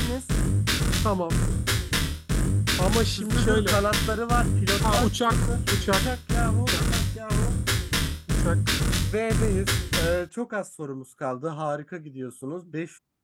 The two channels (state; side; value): identical; both; correlation 1.00